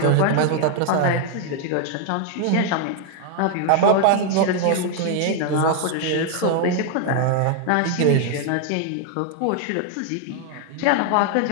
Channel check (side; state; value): both; different; correlation 0.00